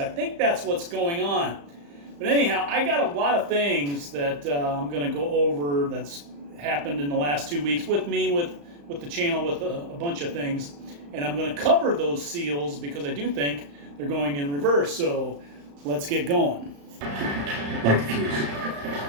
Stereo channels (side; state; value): left; late; 35 ms